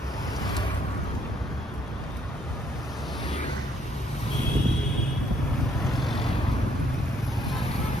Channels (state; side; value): normal; both; correlation 0.68